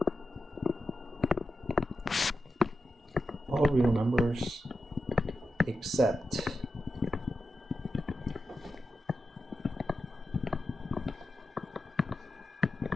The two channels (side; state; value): both; normal; correlation 0.90